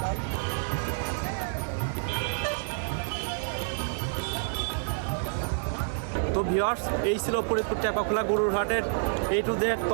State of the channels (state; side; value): silent; left; 56 dB below the other